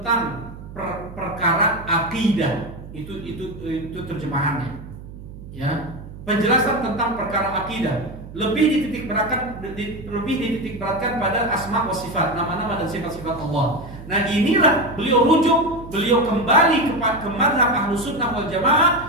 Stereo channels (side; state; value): right; noise; hum, 14 dB below the sound